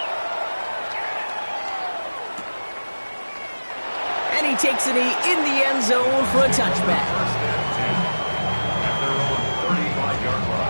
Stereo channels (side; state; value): both; inverted; correlation -1.00